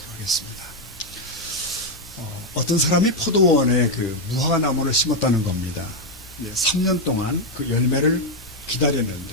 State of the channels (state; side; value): normal; both; correlation 0.03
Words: 하겠습니다. 어떤 사람이 포도원에 그 무화과 나무를 심었다는 겁니다. 3년 동안 그 열매를